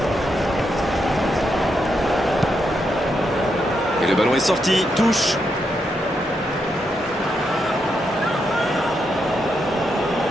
Et le ballon est sorti. Touche.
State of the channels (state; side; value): normal; both; correlation 0.82